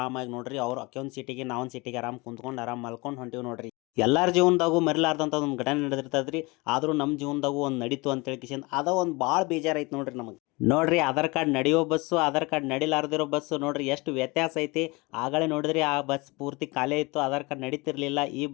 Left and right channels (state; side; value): quieter; right; 25.2 dB